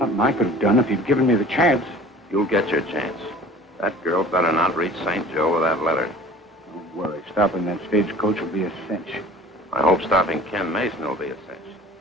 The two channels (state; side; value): normal; both; correlation 0.45